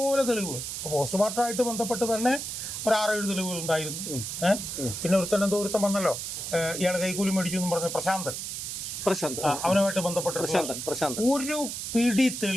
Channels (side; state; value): right; noise; hiss, 5 dB below the sound